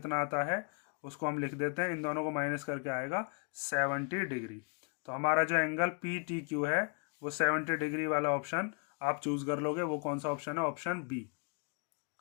आता है उसको हम लिख देते हैं, इन दोनों को माइनस करके आएगा 70 डिग्री। तो हमारा जो एंगल पी टी क्यू है वो 70 डिग्री वाला ऑप्शन आप चूज कर लोगे। वो कौन सा ऑप्शन है? Option B.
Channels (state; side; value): quieter; right; 38.1 dB